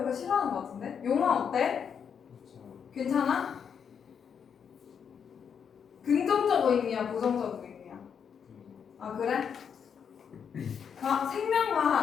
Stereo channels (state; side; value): quieter; right; 7.3 dB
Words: 싫어하는 것 같은데? 용화 어때? 괜찮아? 긍정적 의미야, 부정적 의미야? 아, 그래?